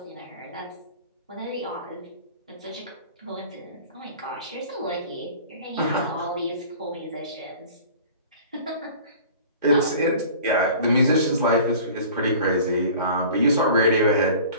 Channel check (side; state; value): both; inverted; correlation -0.44